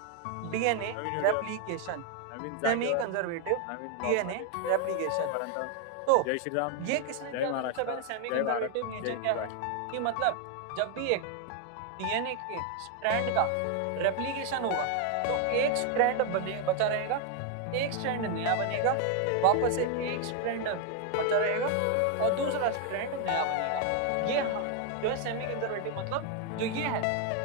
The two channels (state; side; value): different; both; correlation 0.01